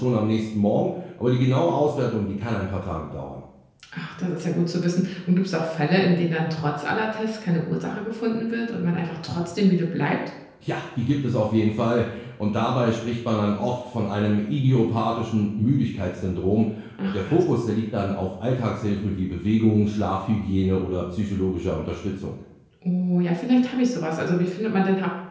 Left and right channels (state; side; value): identical; both; correlation 1.00